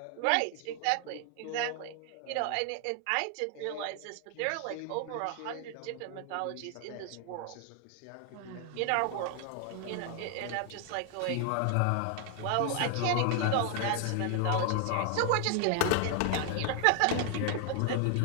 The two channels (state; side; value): different; both; correlation 0.00